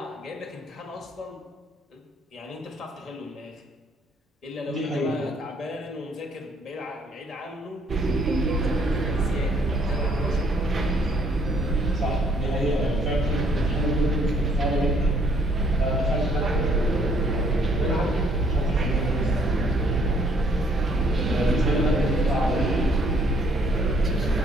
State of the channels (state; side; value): normal; both; correlation 0.65